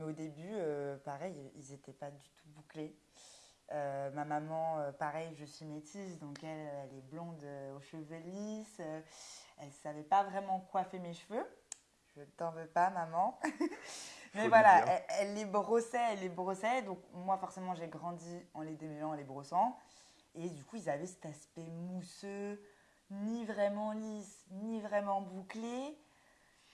au début, pareil, ils n'étaient pas du tout bouclés. Ma maman, pareil, je suis métisse, donc elle est blonde aux cheveux lisses. Elle ne savait pas vraiment coiffer mes cheveux. Je t'en veux pas, maman. Faut Mais lui voilà, dire. elle les brossait. Donc moi, forcément, j'ai grandi en les démêlant, en les brossant. Et du coup, ils avaient cet aspect mousseux, ni vraiment lisse, ni vraiment bouclé.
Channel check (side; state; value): both; identical; correlation 1.00